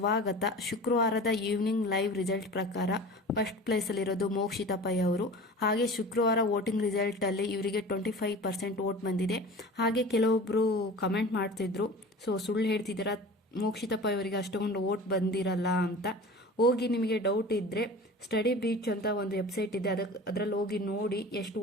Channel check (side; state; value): both; normal; correlation 0.38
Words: ಶುಕ್ರವಾರದ ಈವ್ನಿಂಗ್ ಲೈವ್ ರಿಸಲ್ಟ್ ಪ್ರಕಾರ ಫಸ್ಟ್ ಪ್ಲೇಸಲ್ಲಿರೋದು ಮೋಕ್ಷಿತಾ ಪೈ ಅವರು. ಹಾಗೆ ಶುಕ್ರವಾರ ವೋಟಿಂಗ್ ರಿಸಲ್ಟಲ್ಲಿ ಇವರಿಗೆ 25% ವೋಟ್ ಬಂದಿದೆ. ಹಾಗೆ ಕೆಲವೊಬ್ಬರು ಕಮೆಂಟ್ ಮಾಡ್ತಿದ್ರು, ಸುಳ್ಳು ಹೇಳ್ತಿದ್ದೀರಾ, ಮೋಕ್ಷಿತಾ ಪೈ ಅವರಿಗೆ ಅಷ್ಟೊಂದು ವೋಟ್ ಬಂದಿರಲ್ಲ ಅಂತ. ಹೋಗಿ ನಿಮಗೆ ಡೌಟ್ ಇದ್ದರೆ ಸ್ಟಡಿ ಬೀಚ್ ಅಂತ ಒಂದು ವೆಬ್ಸೈಟ್ ಇದೆ, ಅದರಲ್ಲಿ ಹೋಗಿ ನೋಡಿ ಎಷ್ಟು